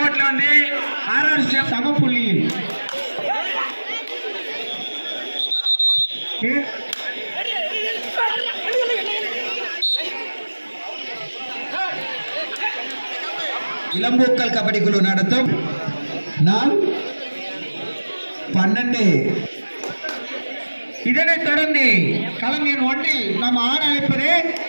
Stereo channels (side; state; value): both; inverted; correlation -1.00